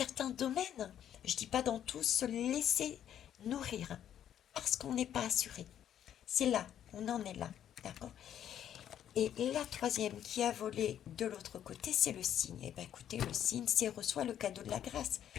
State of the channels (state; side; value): quieter; right; 10.2 dB